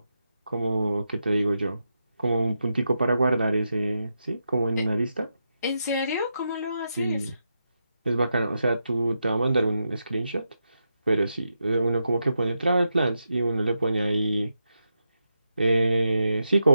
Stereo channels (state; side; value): inverted; both; correlation -0.86